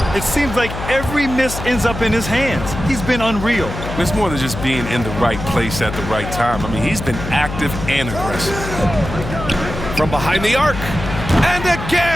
It seems like every miss ends up in his hands. He's been unreal. It's more than just being in the right place at the right time. I mean, he's been active and aggressive. From behind the arc. And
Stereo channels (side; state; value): left; noise; hum, 8 dB below the sound